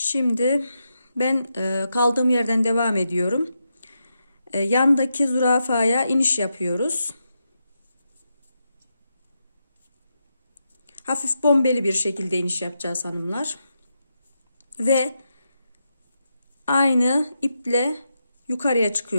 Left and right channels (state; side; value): inverted; both; correlation -0.85